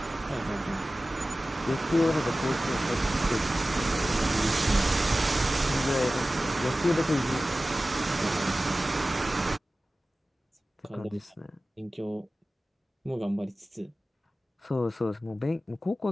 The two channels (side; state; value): both; normal; correlation 0.96